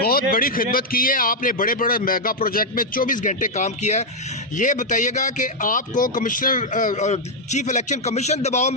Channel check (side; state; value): both; normal; correlation -0.01